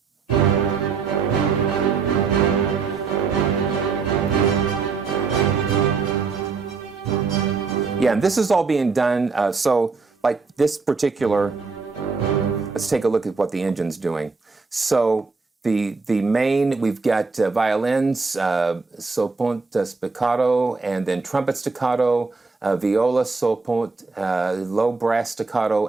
Yeah, and this is all being done. So, like this particular, let's take a look at what the engine's doing. So the main, we've got violins, sopont spiccato, and then trumpet staccato, viola, sopont, low brass staccato,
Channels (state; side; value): quieter; left; 4.6 dB